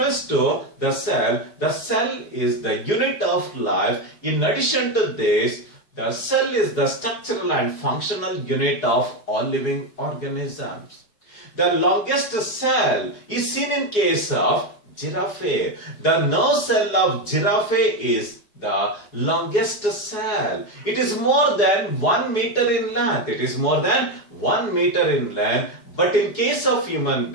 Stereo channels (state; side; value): late; right; 4.8 ms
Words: to the cell is the unit of life. In addition to this, the cell is the structural and functional unit of all living organisms. The longest cell is seen in case of giraffe. The nerve cell of giraffe is the longest cell. It is more than 1 meter in length. But in case of human